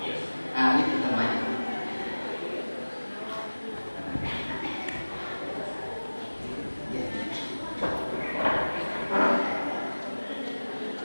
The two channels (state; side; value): inverted; both; correlation -1.00